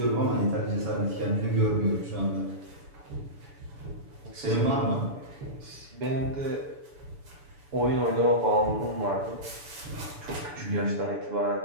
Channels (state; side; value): late; left; 6.9 ms